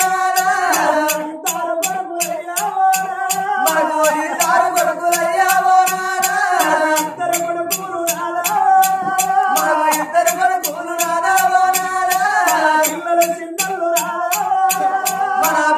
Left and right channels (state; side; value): identical; both; correlation 1.00